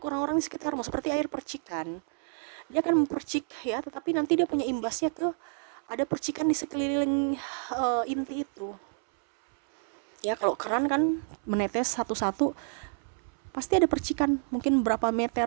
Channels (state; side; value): silent; left; 59 dB below the other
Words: orang-orang di sekitarmu. Seperti air percikan. Dia akan mempercik ya, tetapi nanti dia punya imbasnya ada percikan di sekeliling inti itu. Ya kalau keran kan menetes satu-satu, pasti ada percikan, mungkin berapa